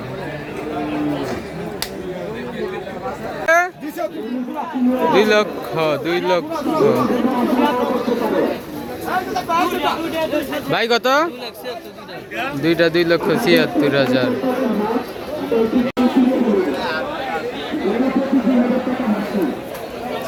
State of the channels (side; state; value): both; identical; correlation 1.00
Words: দুই লক্ষ ভাই কত? দুইটা 2,76,000।